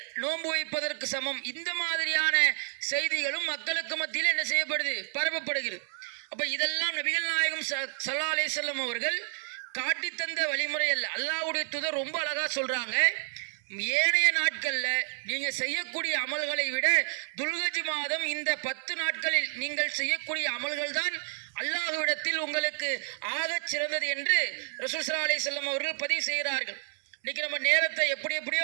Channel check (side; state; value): left; silent; digital silence